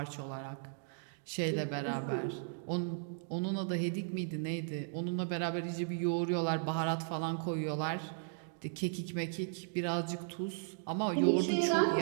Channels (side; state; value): left; silent; digital silence